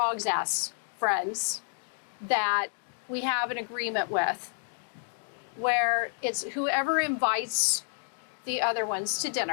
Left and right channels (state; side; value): silent; right; digital silence